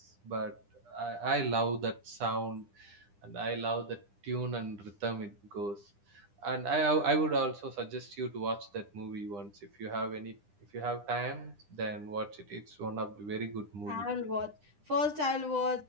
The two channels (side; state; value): left; late; 9.9 ms